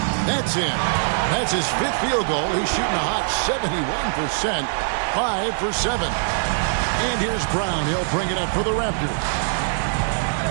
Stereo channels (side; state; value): left; silent; 64 dB below the other